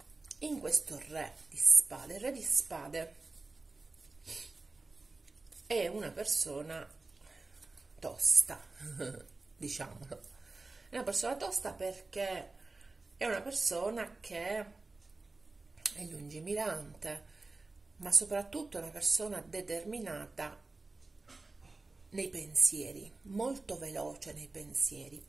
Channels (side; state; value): left; quieter; 3.5 dB